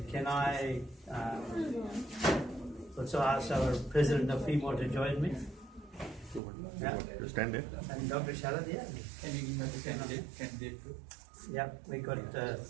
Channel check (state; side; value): drops out; left; at 6.4 s